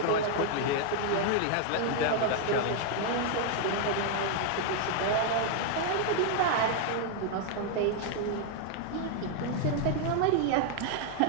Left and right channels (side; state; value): both; different; correlation 0.00